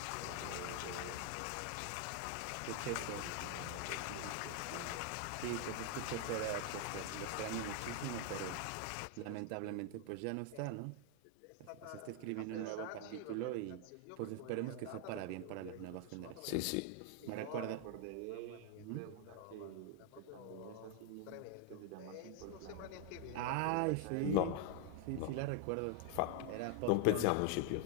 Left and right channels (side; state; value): both; different; correlation 0.00